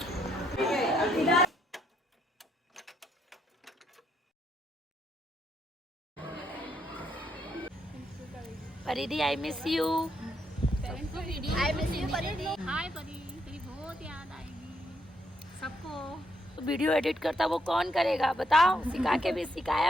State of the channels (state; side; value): normal; both; correlation 0.75